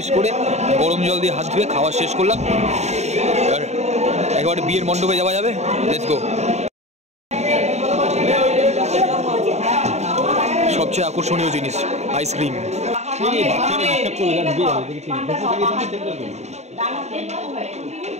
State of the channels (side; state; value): left; late; 0.32 ms